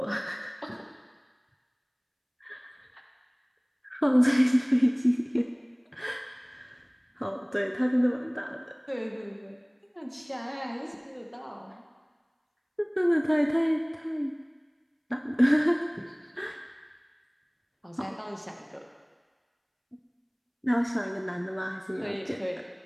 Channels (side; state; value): both; identical; correlation 1.00